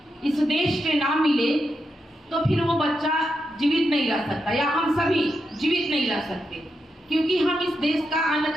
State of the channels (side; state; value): both; normal; correlation 0.85